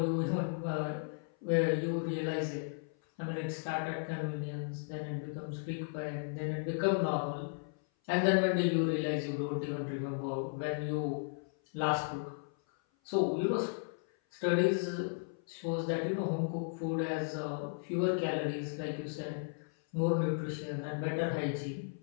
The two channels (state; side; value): silent; right; 54 dB below the other